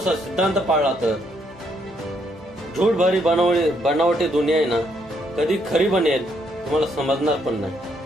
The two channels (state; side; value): normal; both; correlation 0.73